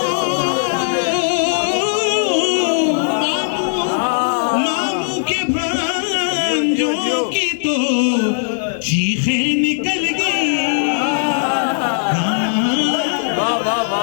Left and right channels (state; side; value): silent; right; 58 dB below the other